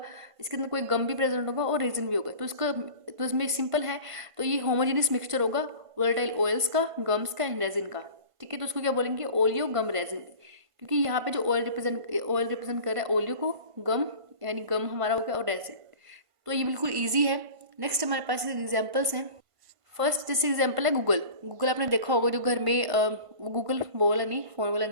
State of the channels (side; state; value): left; late; 1.5 ms